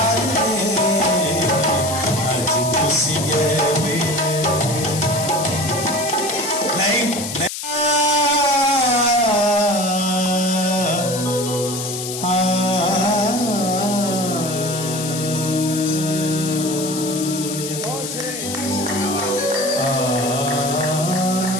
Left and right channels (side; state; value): left; noise; hiss, 6 dB below the sound